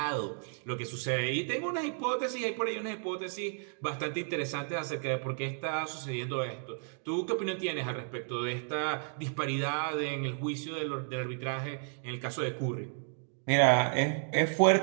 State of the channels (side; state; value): left; silent; 56 dB below the other